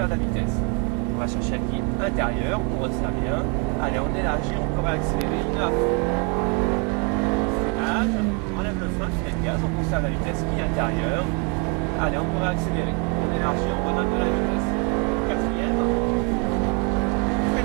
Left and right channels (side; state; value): left; quieter; 34.0 dB